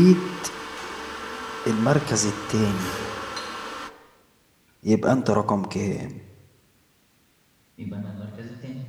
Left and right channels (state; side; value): identical; both; correlation 1.00